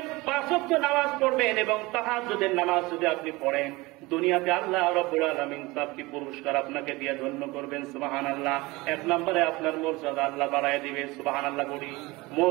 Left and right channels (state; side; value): quieter; left; 22.3 dB